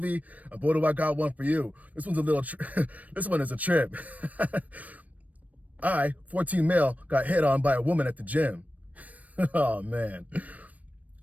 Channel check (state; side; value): late; left; 0.071 ms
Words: And boy, do I got one for you. This one's a little, this one is a trip. I, 14 male, got hit on by a woman at the gym. Oh, man.